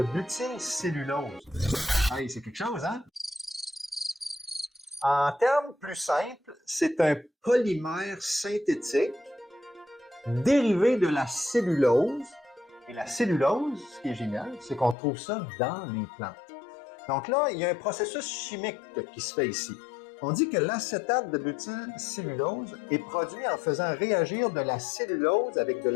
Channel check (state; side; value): drops out; right; at 15.0 s